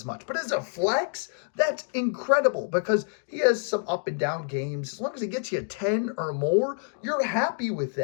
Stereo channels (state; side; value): silent; right; 60 dB below the other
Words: much. But as a flex, that's incredible because he has some up and down games. As long as he gets you 10 or more, you're happy with